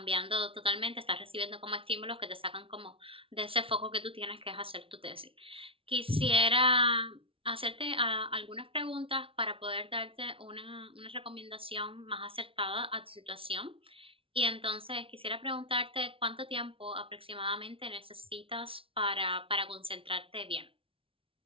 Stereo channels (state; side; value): late; left; 0.26 ms